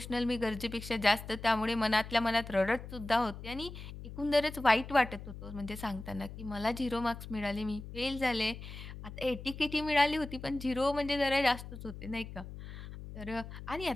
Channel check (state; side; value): noise; left; hum, 11 dB below the sound